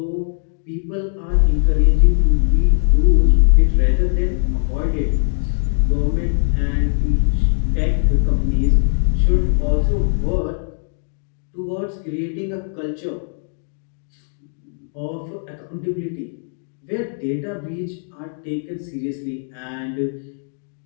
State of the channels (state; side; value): silent; right; digital silence